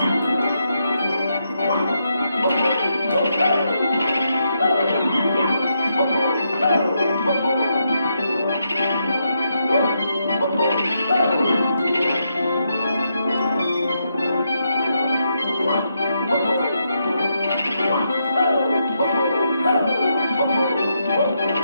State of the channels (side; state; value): both; inverted; correlation -0.81